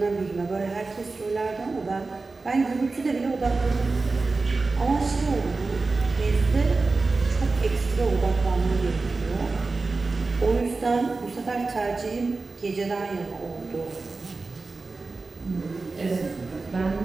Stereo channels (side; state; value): left; quieter; 3.8 dB